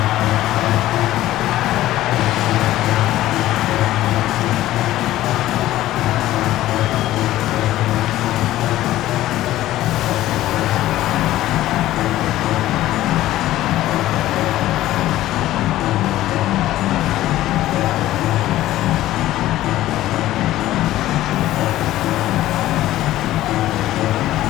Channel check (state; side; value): quieter; right; 14.9 dB